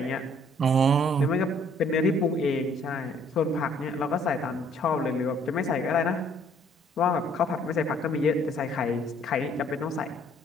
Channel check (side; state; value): both; normal; correlation 0.61